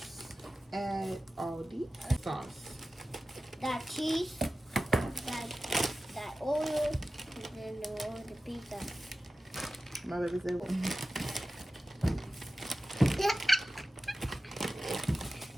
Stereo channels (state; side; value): normal; both; correlation 0.95